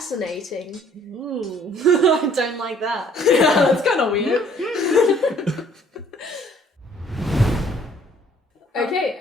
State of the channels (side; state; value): both; normal; correlation 0.59